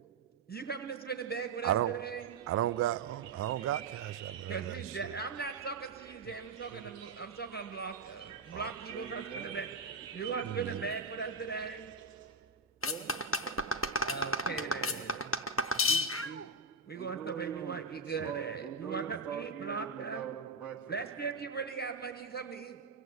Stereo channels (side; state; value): left; quieter; 3.7 dB